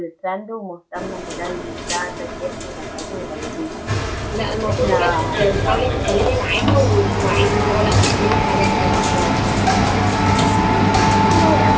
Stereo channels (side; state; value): both; identical; correlation 1.00